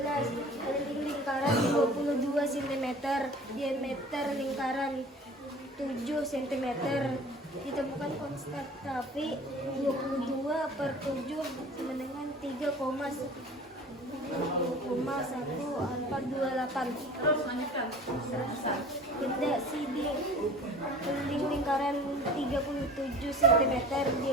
keliling lingkaran 22 cm, diameter lingkaran 7 cm. Ditemukan konstan tapi 22/7 sama dengan 3,1428. Terus lanjutkan. Hasan. Beda sidik keliling lingkaran 37 cm,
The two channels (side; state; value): both; normal; correlation 0.44